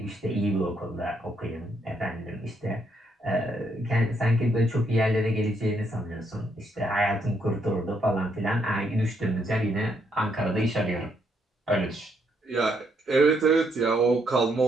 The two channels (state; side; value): normal; both; correlation 0.74